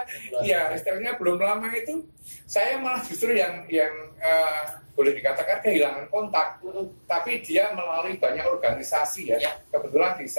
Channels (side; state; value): both; inverted; correlation -1.00